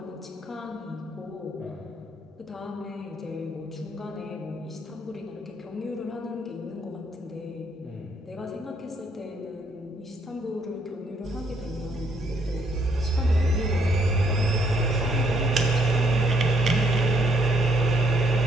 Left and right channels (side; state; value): both; normal; correlation 0.70